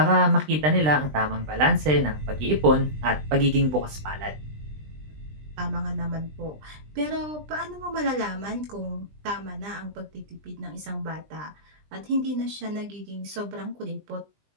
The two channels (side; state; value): left; late; 20 ms